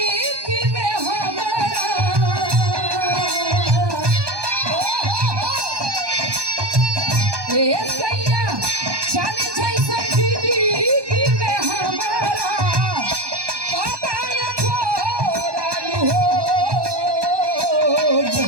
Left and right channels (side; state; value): left; late; 1.2 ms